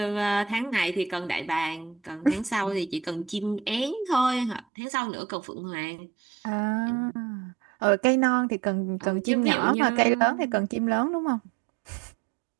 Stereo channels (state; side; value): drops out; left; at 4.7 s